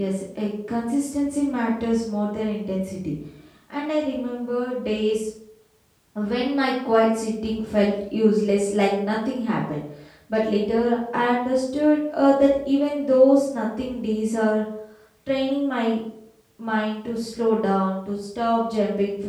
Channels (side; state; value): both; identical; correlation 1.00